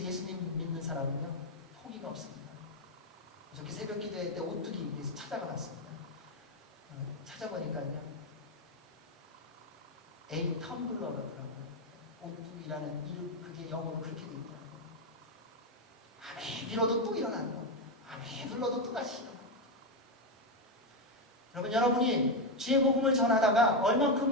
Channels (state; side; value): normal; both; correlation 0.07